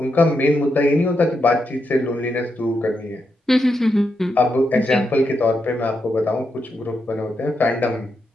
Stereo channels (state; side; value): normal; both; correlation 0.83